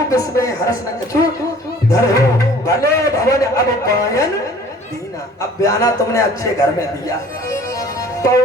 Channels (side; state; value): both; normal; correlation 0.51